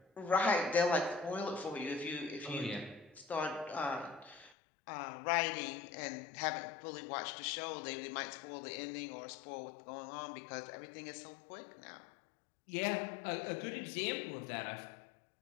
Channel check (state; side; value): drops out; right; at 4.5 s